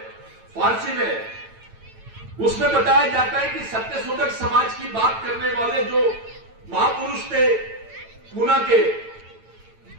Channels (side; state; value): left; late; 8.9 ms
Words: फारसी में, उसमें बताया जाता है कि सत्यशोधक समाज की बात करने वाले जो महापुरुष थे पूना के,